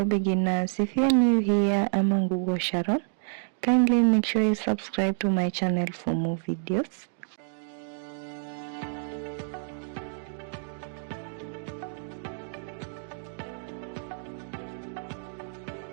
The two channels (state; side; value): silent; left; digital silence